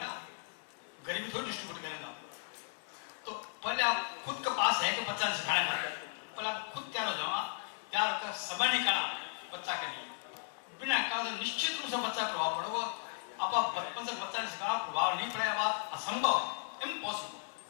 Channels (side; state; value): right; silent; 54 dB below the other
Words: गरीबी थोड़ी डिस्ट्रीब्यूट करेगा। तो पहले आप खुद के पास है कि बच्चा ने सिखाना है पहले आप खुद तैयार हो जाओ। तैयार होकर समय निकाला बच्चा के लिए बिना कहा तो निश्चित रूप से बच्चा प्रभाव पड़ेगा। आप बचपन से बच्चा ने सिखाना प्रभाव नहीं पड़ेगा बात असंभव इम्पॉसिबल।